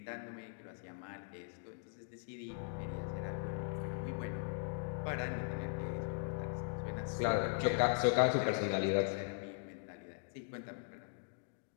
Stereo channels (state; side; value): silent; right; digital silence